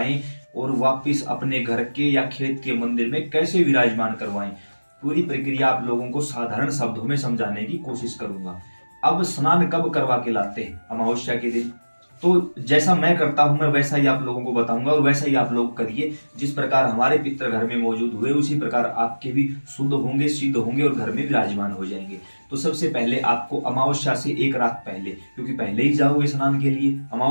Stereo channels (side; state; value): both; inverted; correlation -1.00